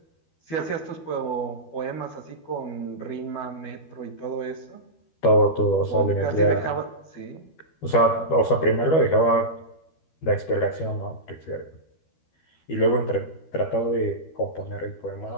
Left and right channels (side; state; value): right; late; 12 ms